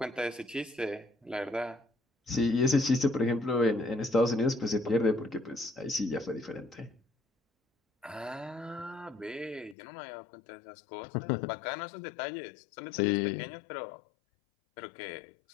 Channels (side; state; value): right; drops out; at 9.8 s